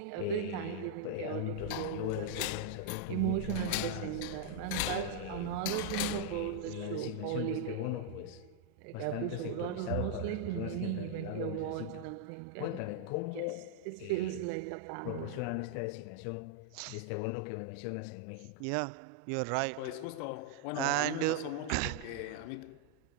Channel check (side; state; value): both; different; correlation -0.01